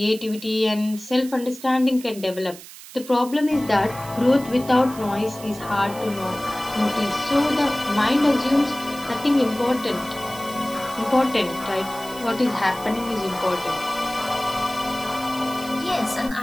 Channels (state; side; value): noise; right; hiss, 16 dB below the sound